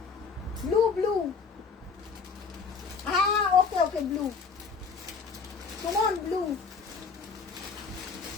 ব্লু ব্লু, হ্যাঁ হ্যাঁ ওকে ওকে, ব্লু কেমন ব্লু।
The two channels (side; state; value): right; quieter; 5.3 dB